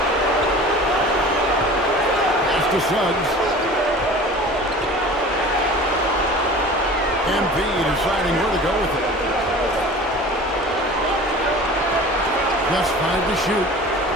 Pass to Suggs. MP deciding where to go with it. Just 5 to shoot.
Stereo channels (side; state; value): both; normal; correlation 0.40